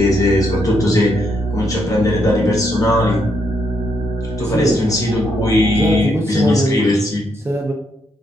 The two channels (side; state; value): both; normal; correlation 0.77